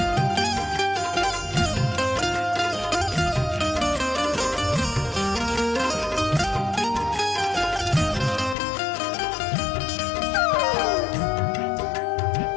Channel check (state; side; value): drops out; right; at 8.6 s